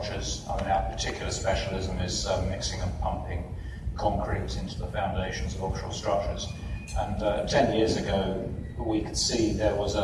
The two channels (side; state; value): both; identical; correlation 1.00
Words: I mean, our particular specialism is mixing and pumping concrete into the foundations of offshore structures. And 10 years ago, we could see there was